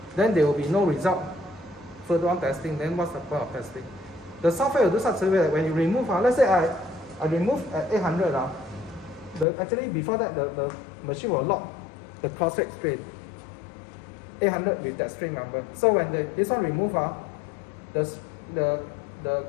then there will be no result further on testing. Then what's the point of testing? The software will do such a way that when you remove, let's say I remove at 800, actually before that the machine will lock the caustic strain 800 with that strain number. So when this one remove, the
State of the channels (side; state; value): right; drops out; at 9.5 s